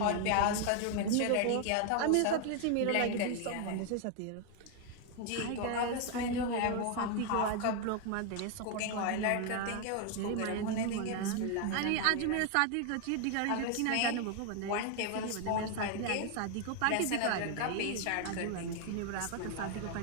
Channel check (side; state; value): both; different; correlation 0.01